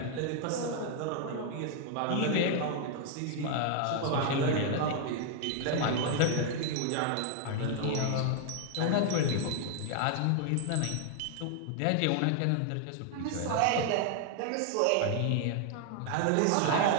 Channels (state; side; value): different; both; correlation 0.00